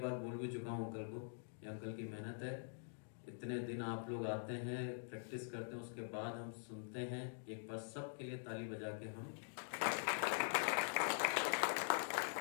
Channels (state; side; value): silent; right; digital silence